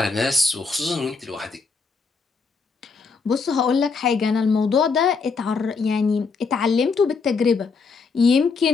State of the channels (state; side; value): quieter; right; 4.7 dB